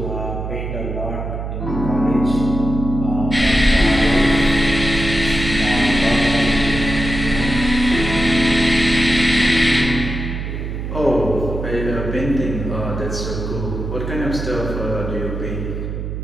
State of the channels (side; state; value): right; noise; hum, 5 dB below the sound